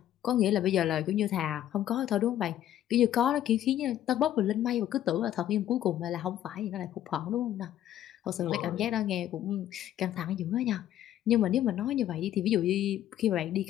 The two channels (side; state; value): right; quieter; 12.0 dB